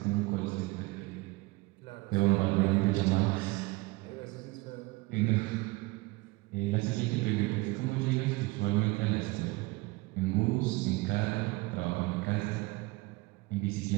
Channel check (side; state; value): left; quieter; 23.0 dB